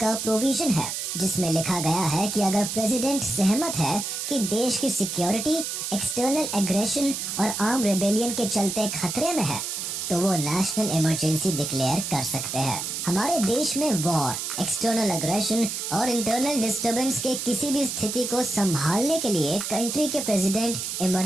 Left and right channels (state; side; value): noise; right; hiss, 4 dB below the sound